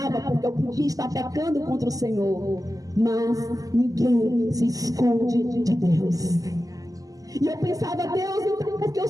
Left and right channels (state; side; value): late; left; 0.17 ms